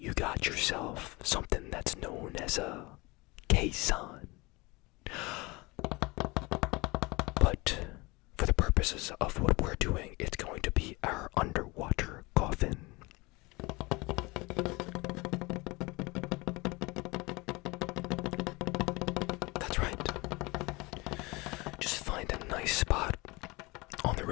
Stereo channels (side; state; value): right; quieter; 24.3 dB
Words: got yourself something that's known as a caisson. But for the purposes of what we're doing, it's going to be our underwater coffin. That's right. Just find a nice spot on the